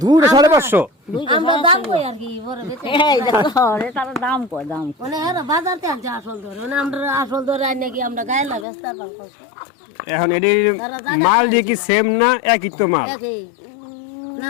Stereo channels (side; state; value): right; drops out; at 8.7 s